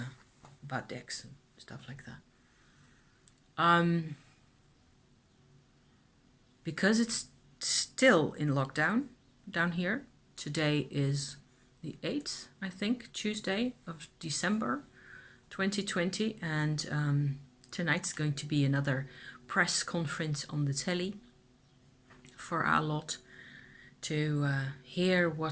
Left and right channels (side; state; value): both; identical; correlation 1.00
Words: decks and stuff like that. Because it's still in lockdown down here. Today is the 8th, I think, Tuesday of December 2020, and tonight's going to be another press conference on the telly for our lot to hear